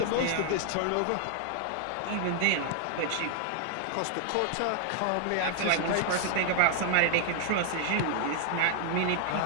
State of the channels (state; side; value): different; both; correlation 0.00